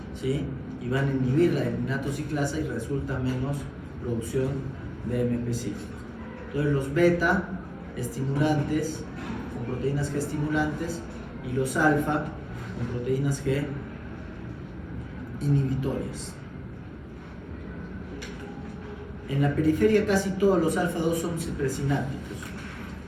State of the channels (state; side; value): identical; both; correlation 1.00